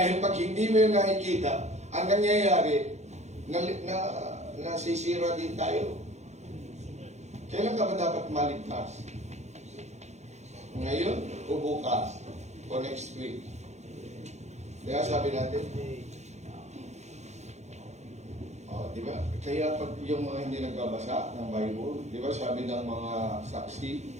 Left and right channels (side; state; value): left; late; 0.33 ms